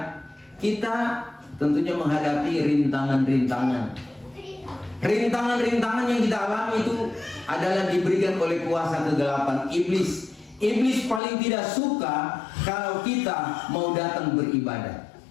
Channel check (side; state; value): right; drops out; at 11.2 s